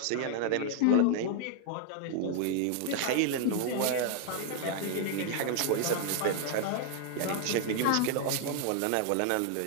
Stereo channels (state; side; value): different; both; correlation 0.00